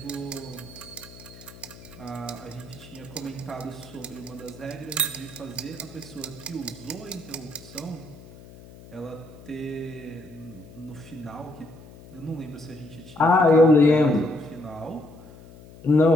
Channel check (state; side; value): noise; left; hum, 19 dB below the sound